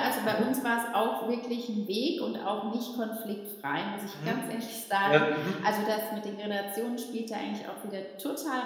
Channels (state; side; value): identical; both; correlation 1.00